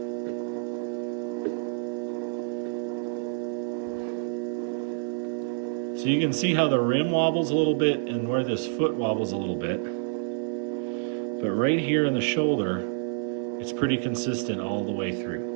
So you can see how the rim wobbles a little bit and where this foot wobbles a little bit. But right here in the shoulder, it's pretty consistent all the way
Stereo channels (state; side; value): silent; left; digital silence